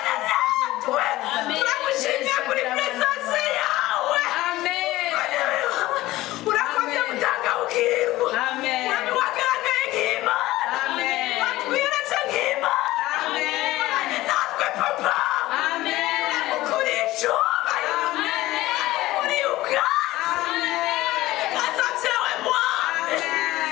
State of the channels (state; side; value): quieter; right; 17.2 dB